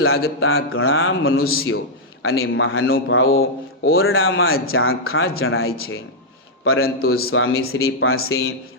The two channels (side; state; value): both; normal; correlation -0.05